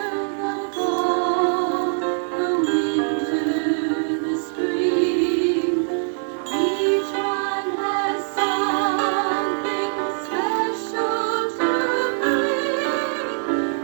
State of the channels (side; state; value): left; silent; digital silence